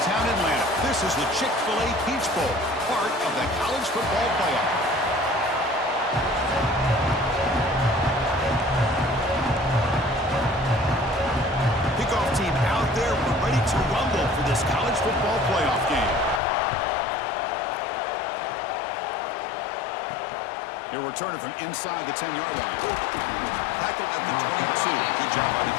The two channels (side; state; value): right; drops out; at 16.4 s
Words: Atlanta. This is the Chick-fil-A Peach Bowl, part of the college football playoff. Kickoff team out there. We're ready to rumble for this college football playoff game. Here returning from inside the 10-yard line. Tackled at the 22. Good job by the